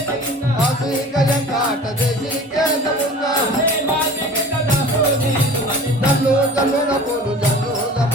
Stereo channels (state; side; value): normal; both; correlation 0.42